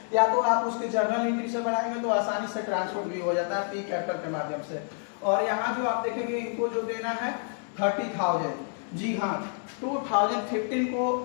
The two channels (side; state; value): right; silent; 59 dB below the other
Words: या तो आप उसके जर्नल एंट्री से बनाएंगे तो आसानी से ट्रांसफर भी हो जाता है पी कैपिटल के माध्यम से। और यहाँ जो आप देखेंगे इनको जो देना है 30,000, जी हाँ 2015 को